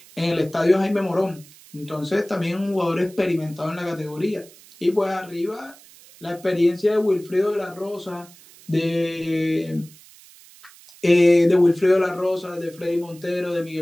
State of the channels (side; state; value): right; noise; hiss, 23 dB below the sound